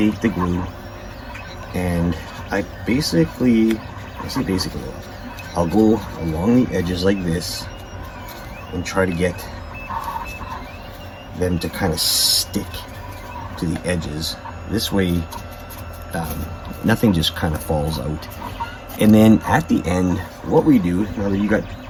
the glue and I say basically, I'll go along the edges like this and try to get them to kind of stick to the edges. This way, nothing just kind of falls out. And then at the end, what we do, now that you got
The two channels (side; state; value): both; identical; correlation 1.00